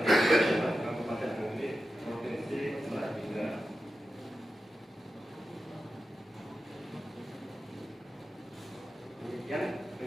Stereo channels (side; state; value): both; normal; correlation 0.92